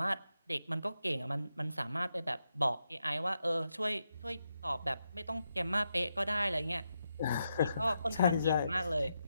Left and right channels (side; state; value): both; inverted; correlation -0.84